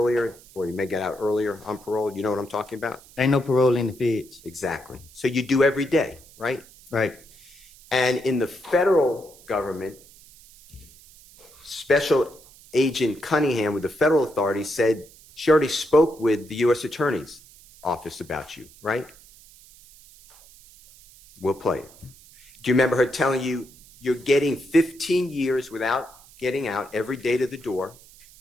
or you may get out earlier on parole. You know what I'm talking about? Ain't no parole in the feds. Exactly. So you do every day, right? Right. And in the federal government, Special Agent Cunningham with the federal authorities said she already spoke with the U.S. Attorney's office about you, right? We'll play it. Do you remember her telling you you're getting 15 years without getting out every day to the door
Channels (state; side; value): noise; right; hiss, 24 dB below the sound